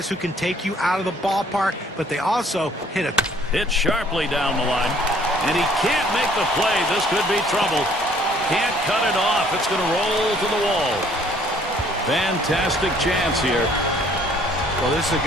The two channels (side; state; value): both; normal; correlation 0.60